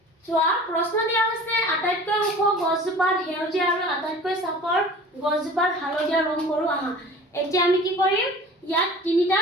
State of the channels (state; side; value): normal; both; correlation 0.42